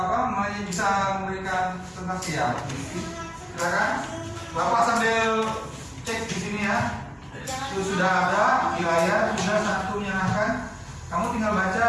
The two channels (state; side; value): identical; both; correlation 1.00